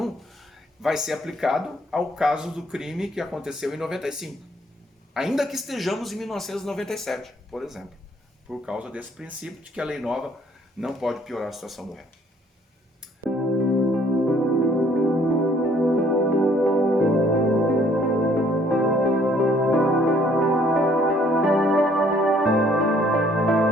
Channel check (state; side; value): normal; both; correlation 0.62